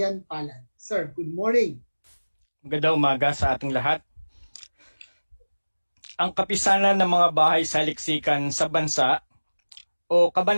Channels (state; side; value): inverted; both; correlation -1.00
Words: Palan. Sir, good morning. Magandang umaga sa ating lahat. Ang Kapisanan ng mga Bahay-Saliksikan sa Bansa o